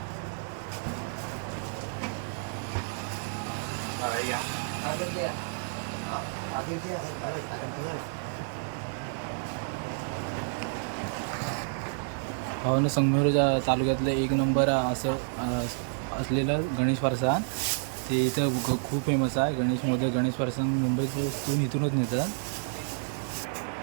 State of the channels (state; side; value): silent; left; digital silence